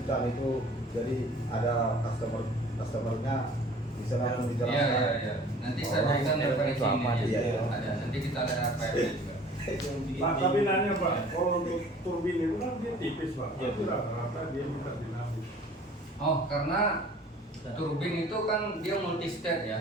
kan itu, jadi ada customernya bisa langsung Iya, dijelaskan. iya, iya. Nanti saya Oh, berikan referensi itu apa? ini. Iya, Ya. iya. Ada. Nanti kita ada RPM juga. Pak, tapi nanya Pak, kalau untuk turbin itu kan dia tipis Pak, Iya, tapi rata-rata dia minta dinamis. Oh, karena turbin itu kan dia multi state ya.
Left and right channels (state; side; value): normal; both; correlation 0.49